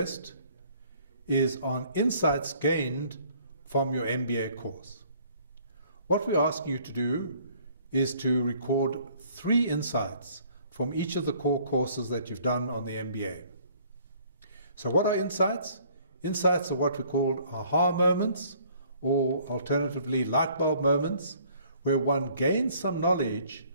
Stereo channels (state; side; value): inverted; both; correlation -0.59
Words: is on insights gained from your MBA course. What we're asking you to do is to record 3 insights from each of the core courses that you've done on the MBA. So what are insights? Insights are what we call aha moments, or alternatively light bulb moments, where one gains some knowledge